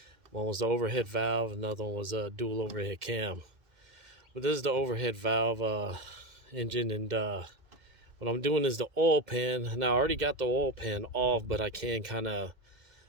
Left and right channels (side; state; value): left; late; 2.0 ms